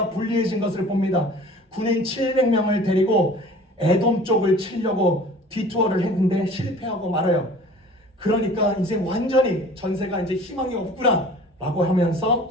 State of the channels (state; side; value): normal; both; correlation 0.46